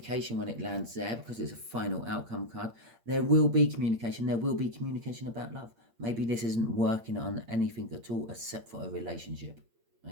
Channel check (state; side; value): late; left; 8.8 ms